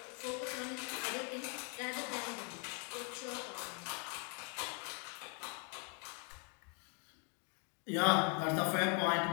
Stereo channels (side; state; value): right; quieter; 38.7 dB